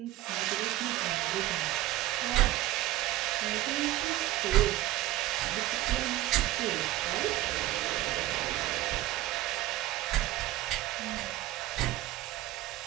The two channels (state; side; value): quieter; left; 15.6 dB